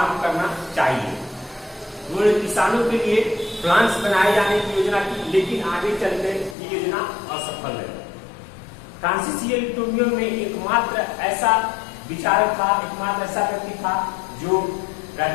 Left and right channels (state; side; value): drops out; right; at 6.6 s